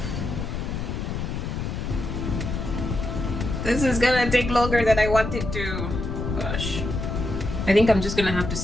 This is gonna take longer than I wanted to. Gosh. I think I'm just gonna have to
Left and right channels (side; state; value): left; noise; rumble, 4 dB below the sound